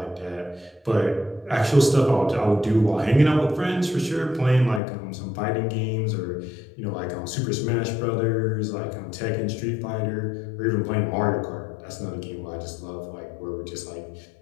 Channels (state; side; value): drops out; right; at 4.8 s